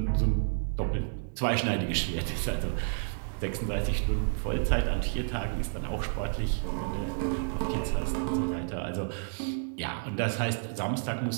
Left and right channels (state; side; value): silent; left; digital silence